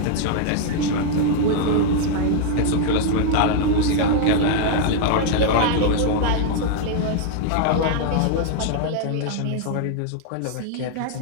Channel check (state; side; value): different; both; correlation 0.00